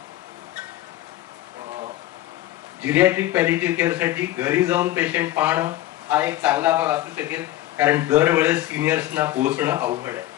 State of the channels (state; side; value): quieter; right; 14.9 dB